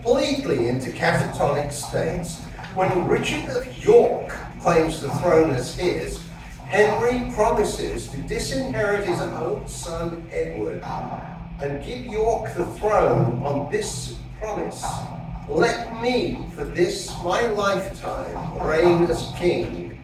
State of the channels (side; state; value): both; identical; correlation 1.00